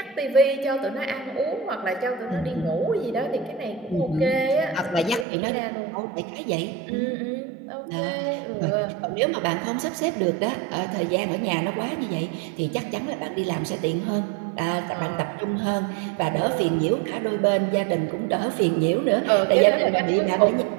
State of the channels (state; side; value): drops out; left; at 5.2 s